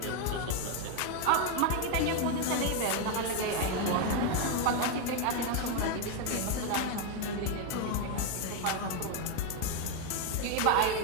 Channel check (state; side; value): different; both; correlation 0.01